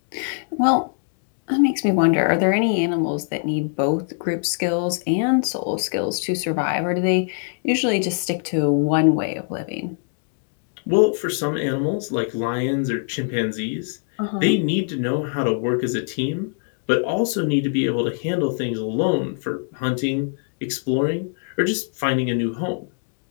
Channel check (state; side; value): silent; right; 59 dB below the other